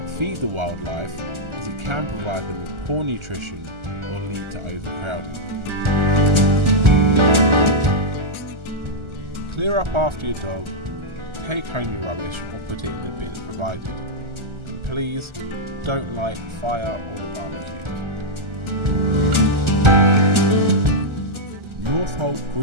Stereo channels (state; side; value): late; left; 1.4 ms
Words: feed the wildlife, as it can provide them with poor nutrition or lead to overcrowding. Clear up after your dog, take home your rubbish or put it in the bin provided. And please don't light the fire or the barbecue. Northolt